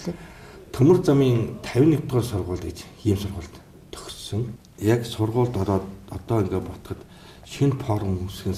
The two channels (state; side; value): identical; both; correlation 1.00